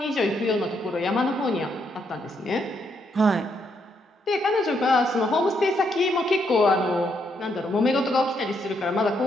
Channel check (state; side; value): normal; both; correlation 0.76